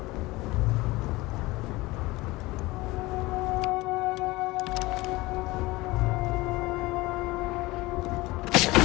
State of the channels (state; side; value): quieter; right; 20.9 dB